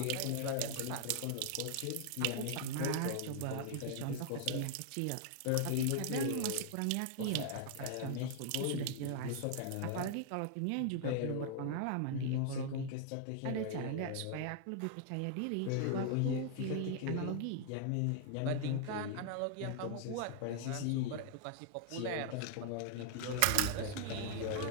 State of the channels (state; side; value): different; both; correlation 0.00